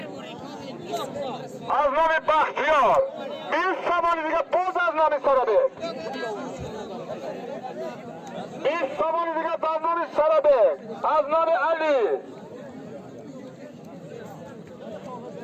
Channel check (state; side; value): identical; both; correlation 1.00